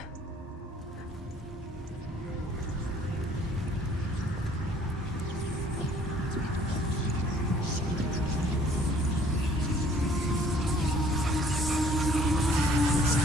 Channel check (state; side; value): normal; both; correlation 0.58